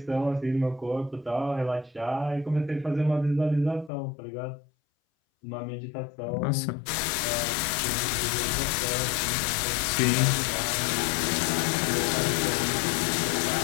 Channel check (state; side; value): drops out; right; at 3.9 s